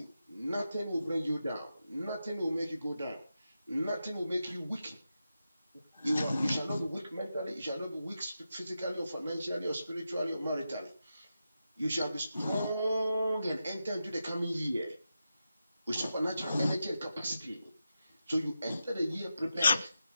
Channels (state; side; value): inverted; both; correlation -0.90